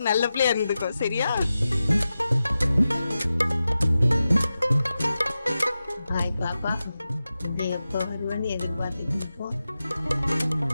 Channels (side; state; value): both; inverted; correlation -0.93